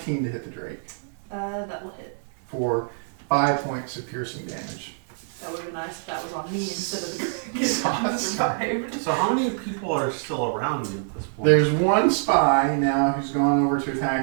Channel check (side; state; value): left; silent; digital silence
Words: to hit the Drake That will hit. for 5 points of piercing damage. That would have been nice if that was on me instead of the dragon. Survived. So how many people are still around me at this point? There's one spy now who's gone over to